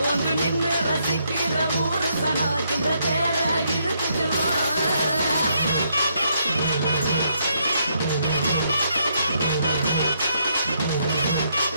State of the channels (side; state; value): both; inverted; correlation -0.74